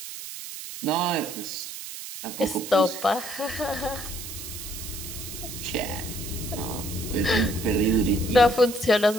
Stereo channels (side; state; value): right; noise; hiss, 10 dB below the sound